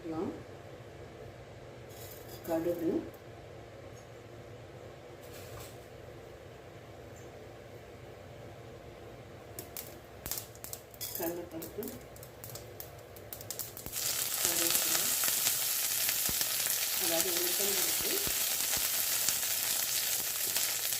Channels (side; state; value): both; identical; correlation 1.00